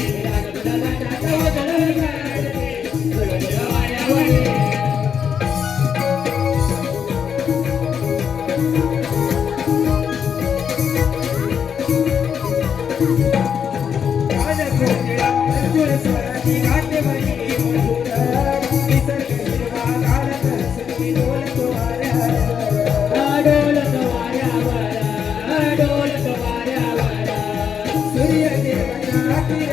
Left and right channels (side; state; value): right; quieter; 7.6 dB